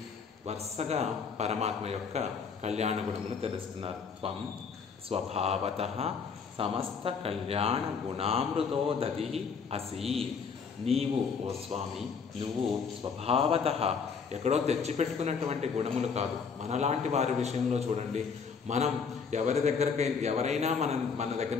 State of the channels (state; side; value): quieter; right; 5.8 dB